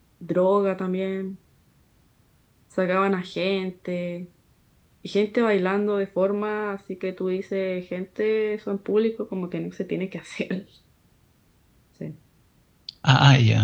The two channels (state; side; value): identical; both; correlation 1.00